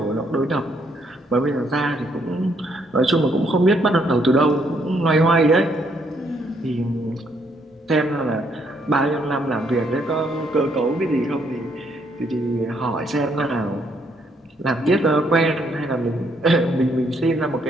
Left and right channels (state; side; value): normal; both; correlation 0.71